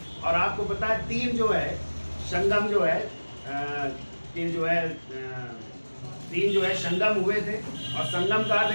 और आपको पता है 3 जो है संगम जो है 3 जो है 3 जो है संगम हुए थे। और संगम का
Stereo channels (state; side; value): inverted; both; correlation -1.00